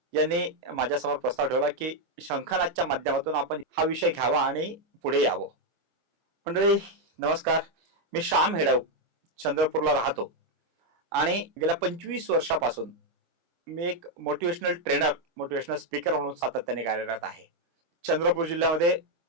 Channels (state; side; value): late; left; 24 ms